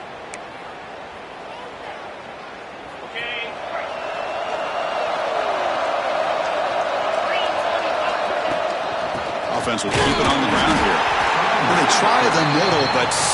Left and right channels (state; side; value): identical; both; correlation 1.00